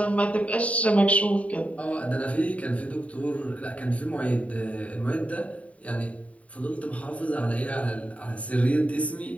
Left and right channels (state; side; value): late; right; 0.067 ms